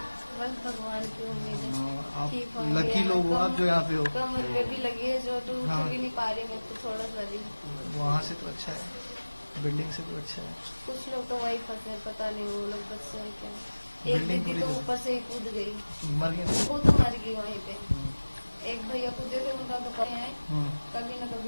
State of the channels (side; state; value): both; inverted; correlation -1.00